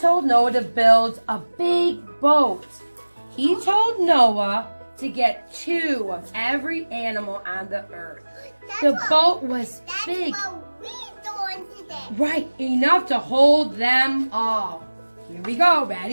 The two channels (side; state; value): both; inverted; correlation -1.00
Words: Noah to build a big boat. He told Noah to get 2 of every animal on the earth. The boat was big. That's what we're doing today. Right, enough to hold them all. Here we go,